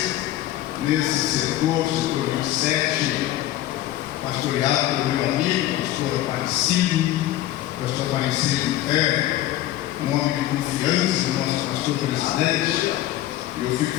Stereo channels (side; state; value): right; quieter; 14.2 dB